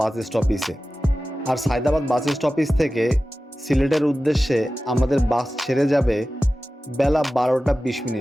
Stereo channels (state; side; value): normal; both; correlation 0.95